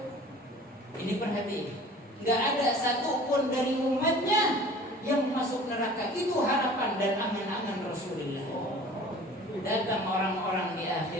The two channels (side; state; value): both; normal; correlation 0.45